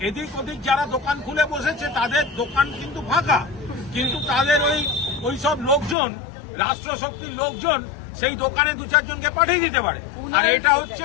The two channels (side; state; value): right; drops out; at 6.0 s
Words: এদিক ওদিক যারা দোকান খুলে বসেছে তাদের দোকান কিন্তু ফাঁকা, কিন্তু তাদের ওই সব লোকজন, রাষ্ট্রশক্তির লোকজন সেই দোকানে দু চারজনকে পাঠিয়ে দিতে পারে। আর এটা হচ্ছে